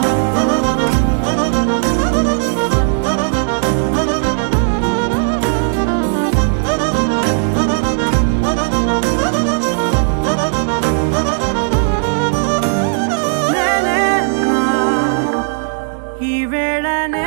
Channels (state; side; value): silent; left; digital silence